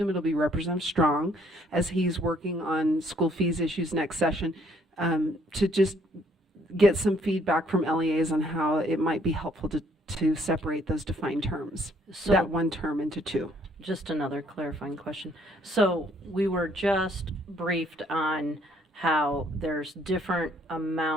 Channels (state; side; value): normal; both; correlation 0.64